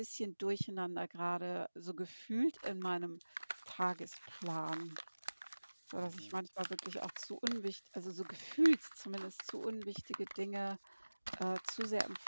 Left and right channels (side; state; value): both; inverted; correlation -1.00